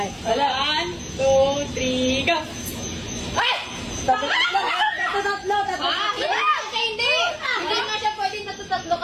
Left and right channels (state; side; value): identical; both; correlation 1.00